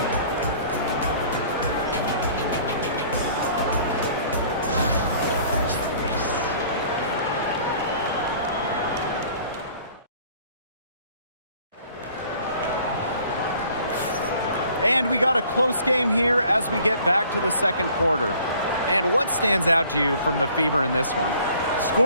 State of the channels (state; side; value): inverted; both; correlation -0.54